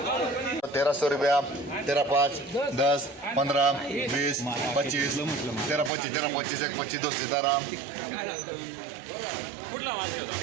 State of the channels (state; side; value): drops out; left; at 5.9 s